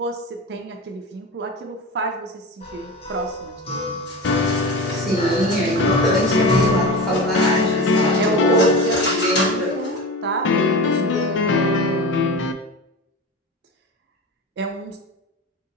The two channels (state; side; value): normal; both; correlation 0.28